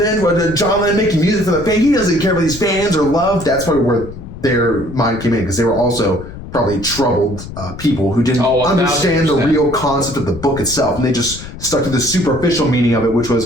John Lennon making music for the fans. He doesn't care about these fans or love. That's probably where their mind came in, because they were also probably troubled people who didn't understand the real concept of the book itself. And they just stuck to the superficial meaning of it, which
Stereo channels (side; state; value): left; noise; rumble, 12 dB below the sound